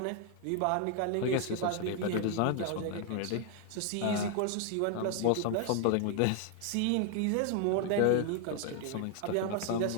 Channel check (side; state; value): both; different; correlation 0.00